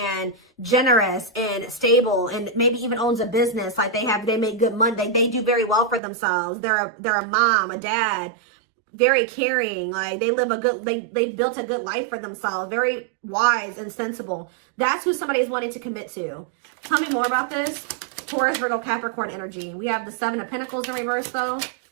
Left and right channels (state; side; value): drops out; left; at 6.0 s